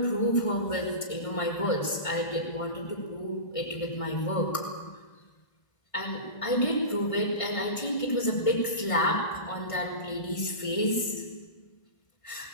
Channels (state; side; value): late; right; 1.5 ms